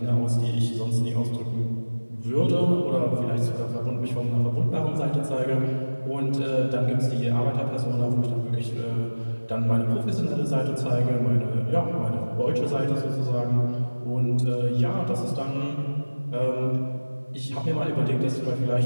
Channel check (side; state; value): both; inverted; correlation -1.00